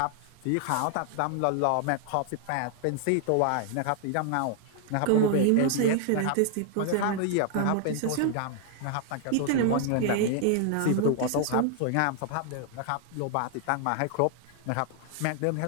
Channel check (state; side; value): different; both; correlation 0.00